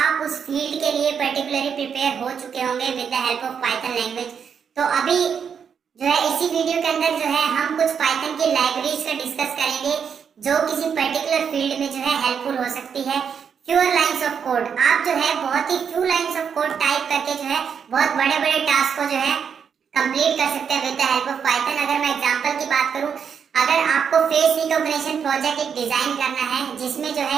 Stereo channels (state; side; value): quieter; left; 7.1 dB